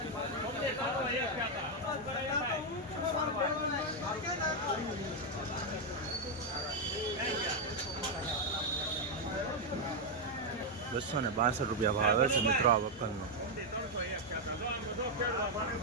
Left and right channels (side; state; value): both; normal; correlation 0.00